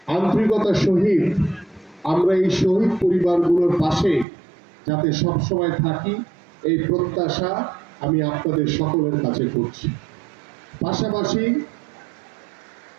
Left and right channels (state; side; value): drops out; left; at 4.2 s